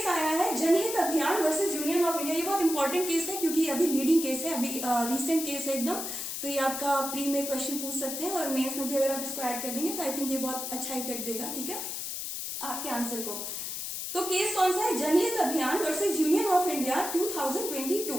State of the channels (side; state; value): left; noise; hiss, 5 dB below the sound